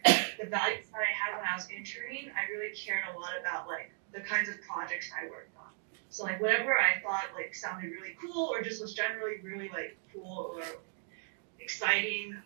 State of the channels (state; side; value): silent; left; 54 dB below the other